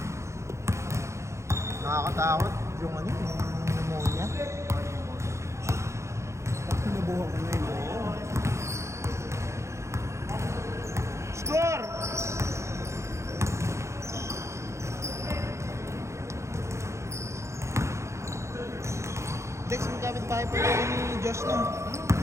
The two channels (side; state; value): left; late; 0.14 ms